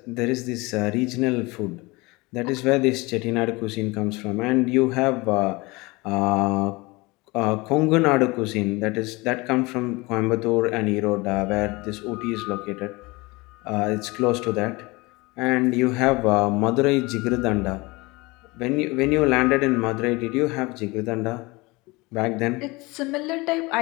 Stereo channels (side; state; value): right; quieter; 23.9 dB